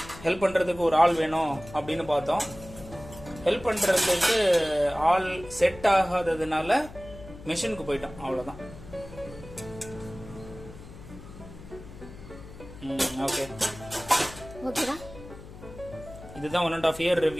ஹெல்ப் பண்ணுறதுக்கு ஒரு ஆள் வேணும் அப்படின்னு பார்த்தோம். ஹெல்ப் பண்ணுறதுக்கு ஆள் செட் ஆகாததுனால மிஷினுக்கு போயிட்டோம், அவ்வளோதான். ஓகே ஓகேடா. இதுதான் 1.5 இயர்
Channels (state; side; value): noise; left; hum, 16 dB below the sound